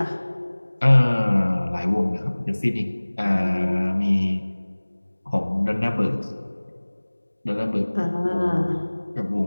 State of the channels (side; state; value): both; inverted; correlation -1.00